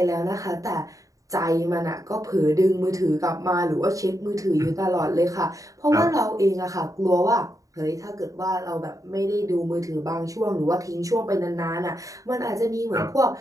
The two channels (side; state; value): left; late; 0.16 ms